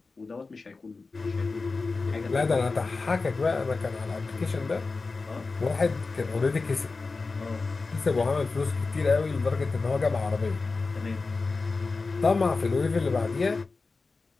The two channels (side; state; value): right; quieter; 4.0 dB